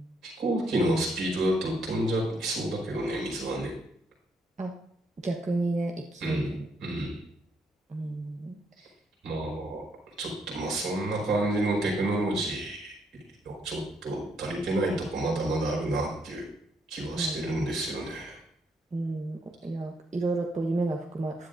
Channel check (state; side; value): normal; both; correlation 0.74